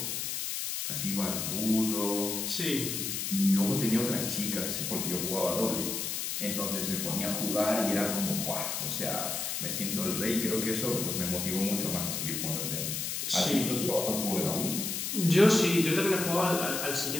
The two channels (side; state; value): left; noise; hiss, 2 dB below the sound